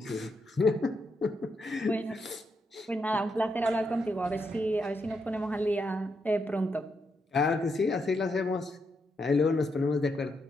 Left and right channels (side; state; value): both; normal; correlation 0.81